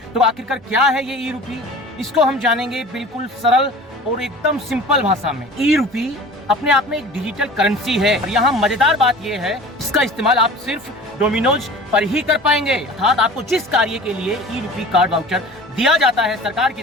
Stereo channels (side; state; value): both; normal; correlation 0.40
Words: तो आखिरकार क्या है ये ई रूपी, इसको हम जानेंगे बिल्कुल सरल और एकदम सिंपल भाषा में। ई रूपी अपने आप में एक डिजिटल करेंसी है और यहाँ मजेदार बात यह है, इसका इस्तेमाल आप सिर्फ डोमिनोज पर ही कर पाएंगे। अर्थात आपको जिस कार्य के लिए ई रूपी कार्ड वाउचर दिया जाता है सरकार की